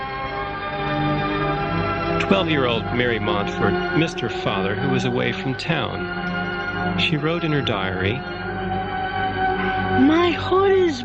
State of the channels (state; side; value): identical; both; correlation 1.00